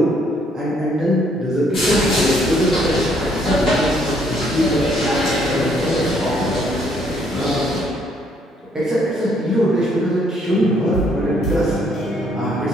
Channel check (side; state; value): both; normal; correlation 0.67